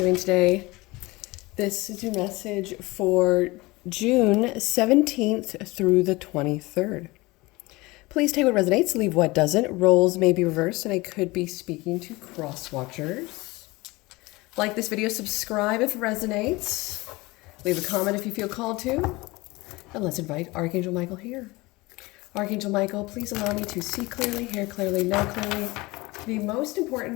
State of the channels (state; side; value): quieter; right; 22.1 dB